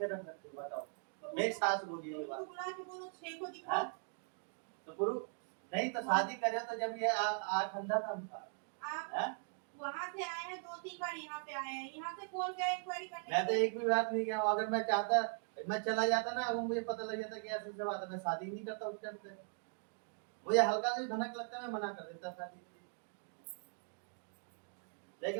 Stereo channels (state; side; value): silent; left; 51 dB below the other